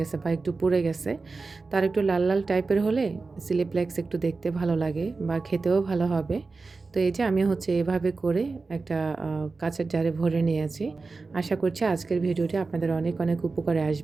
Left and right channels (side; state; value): left; quieter; 4.0 dB